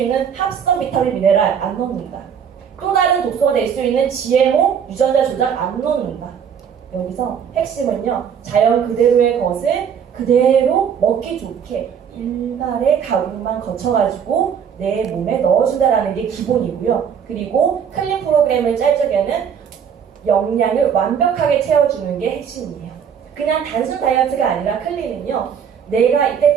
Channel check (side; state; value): left; quieter; 7.7 dB